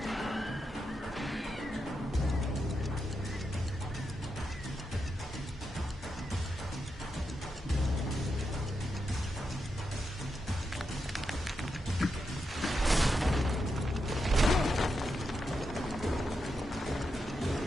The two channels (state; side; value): normal; both; correlation 0.86